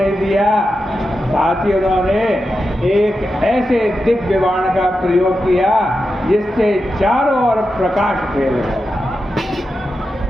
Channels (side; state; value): both; normal; correlation 0.89